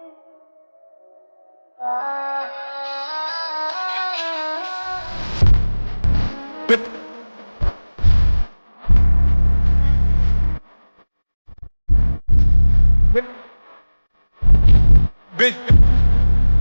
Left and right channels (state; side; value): inverted; both; correlation -1.00